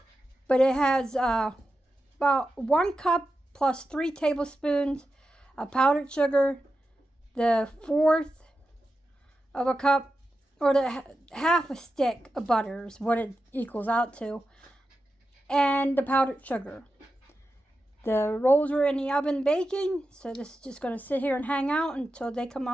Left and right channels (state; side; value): normal; both; correlation 0.90